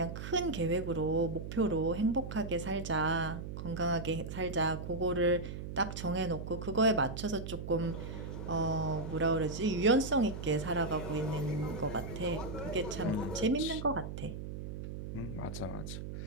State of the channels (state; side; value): noise; right; hum, 7 dB below the sound